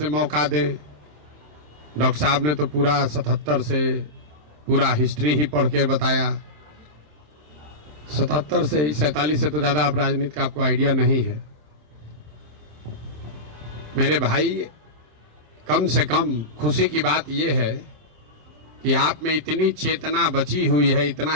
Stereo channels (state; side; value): late; left; 27 ms